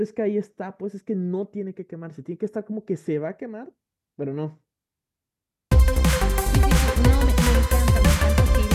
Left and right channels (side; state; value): both; identical; correlation 1.00